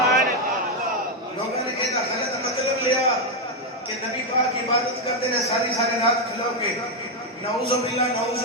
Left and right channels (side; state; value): both; normal; correlation 0.03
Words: لوگوں نے یہ غلط مطلب لیا کہ نبی پاک عبادت کرتے ہیں ساری رات کھلو کے، نعوذ باللہ نعوذ